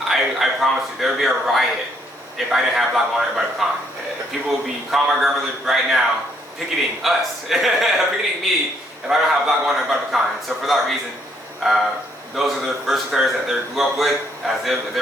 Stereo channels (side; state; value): both; normal; correlation 0.70